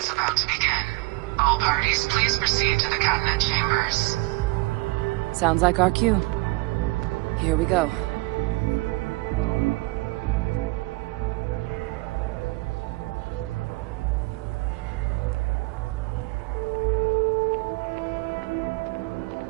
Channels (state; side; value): quieter; left; 24.2 dB